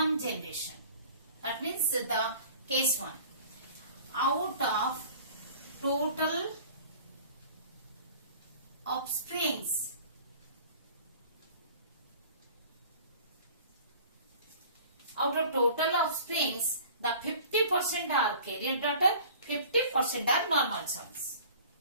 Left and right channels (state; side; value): inverted; both; correlation -0.46